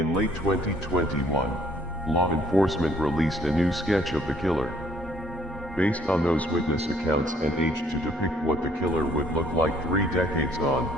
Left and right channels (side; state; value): both; normal; correlation 0.61